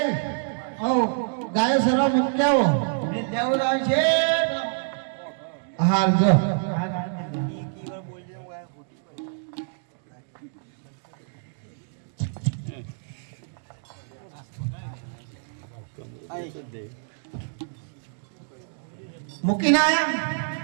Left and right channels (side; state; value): left; silent; digital silence